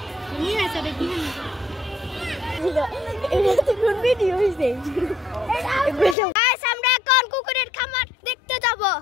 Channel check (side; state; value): right; drops out; at 6.2 s